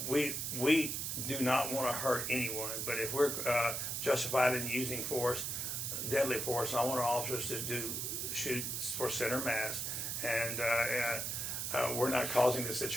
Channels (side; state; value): right; noise; hiss, 2 dB below the sound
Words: do not want to hurt anyone, but if we're justified in using force, deadly force, I want our officers to shoot for center mass, and we're not causing the